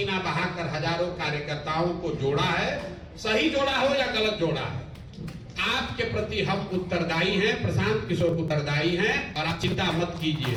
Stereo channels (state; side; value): identical; both; correlation 1.00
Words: बहाकर हजारों कार्यकर्ताओं को जोड़ा है। सही जोड़ा हो या गलत जोड़ा है, आपके प्रति हम उत्तरदायी हैं, प्रशांत किशोर उत्तरदायी हैं। और आप चिंता मत कीजिए,